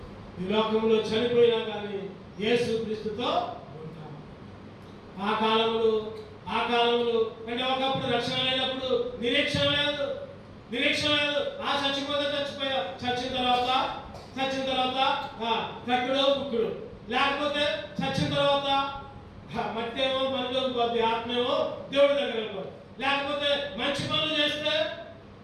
ఈ లోకంలో చనిపోయినా కానీ యేసు క్రీస్తుతో ఉంటాం. ఆ కాలంలో అంటే ఒకప్పుడు రక్షణ లేనప్పుడు నిరీక్షణ లేదు. చచ్చిపోతే చచ్చిపోయా, చచ్చిన తర్వాత కట్టుడు బుక్కుడు, లేకపోతే చచ్చిన తర్వాత మట్టి ఏమో మనలోకి పోద్ది, ఆత్మేమో దేవుడి దగ్గర వెళ్ళిపోదు. లేకపోతే మంచి పనులు చేస్తే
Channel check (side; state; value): both; identical; correlation 1.00